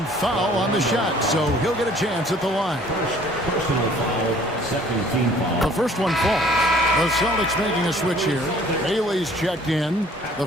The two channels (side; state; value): both; normal; correlation 0.55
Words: foul on the shot, so he'll get a chance at the line. First personal foul. Second team foul. The first one falls. The Celtics making a switch here. Bailey's checked in. The